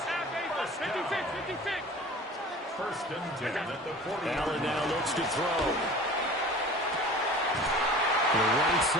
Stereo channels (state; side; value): normal; both; correlation 0.41